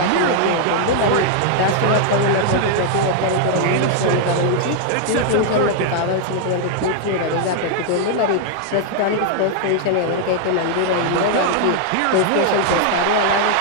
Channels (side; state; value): both; different; correlation 0.00